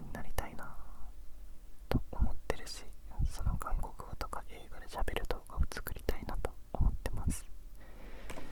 になりたいなと思ってるし、その韓国語とか映画で喋る動画を作りたいなと思ってます。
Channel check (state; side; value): identical; both; correlation 1.00